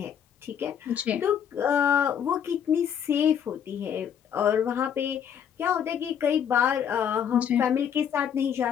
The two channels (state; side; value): quieter; right; 8.5 dB